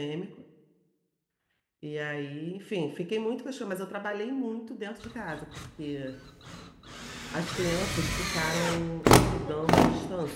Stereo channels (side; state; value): both; identical; correlation 1.00